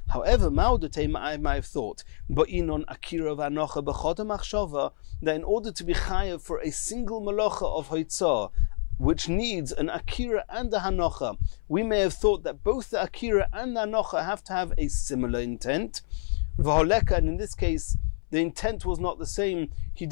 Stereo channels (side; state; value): right; silent; 60 dB below the other